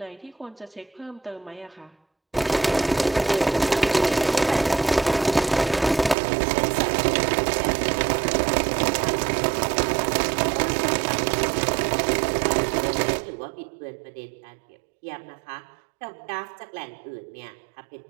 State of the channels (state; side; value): drops out; left; at 6.2 s